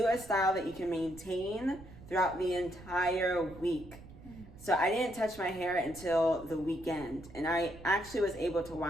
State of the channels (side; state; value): right; noise; rumble, 18 dB below the sound